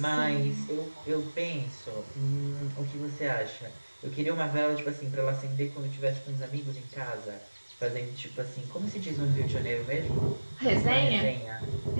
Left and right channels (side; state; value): both; inverted; correlation -1.00